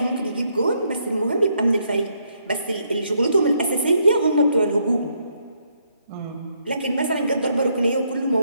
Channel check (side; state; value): both; inverted; correlation -0.74